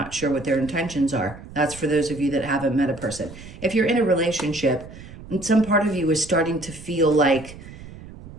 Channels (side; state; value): right; noise; rumble, 16 dB below the sound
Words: sure what their intentions are. That's for those of you that haven't met a person. If you're in a relationship, and some part of you is starting to feel like,